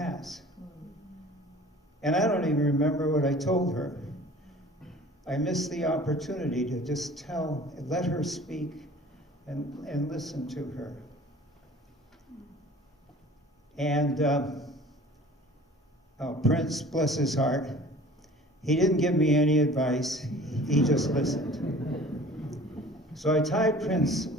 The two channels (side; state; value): both; normal; correlation 0.46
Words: And I don't even remember what I told her. I missed the opportunity to just let her speak and listen to her. And Prince, bless his heart, he didn't give me any advice, he just listened. So I tied